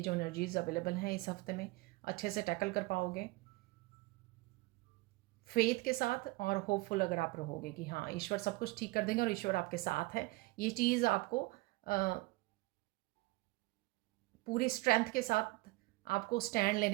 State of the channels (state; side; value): quieter; left; 22.4 dB